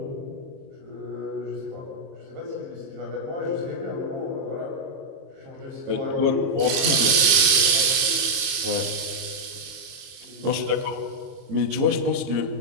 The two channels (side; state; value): left; late; 22 ms